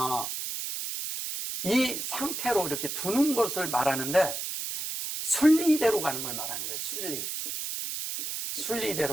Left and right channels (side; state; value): right; noise; hiss, 4 dB below the sound